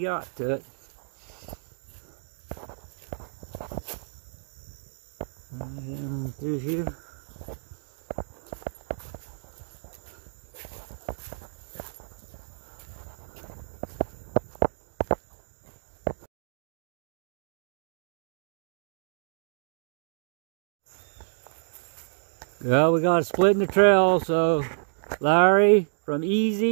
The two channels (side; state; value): left; silent; digital silence